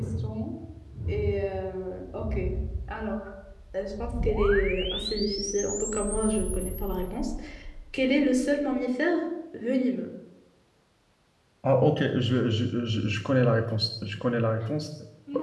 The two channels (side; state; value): both; identical; correlation 1.00